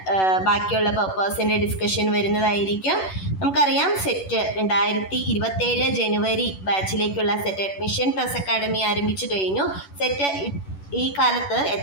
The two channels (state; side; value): late; right; 11 ms